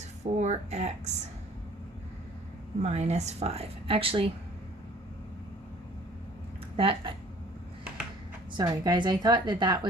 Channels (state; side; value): normal; both; correlation 0.53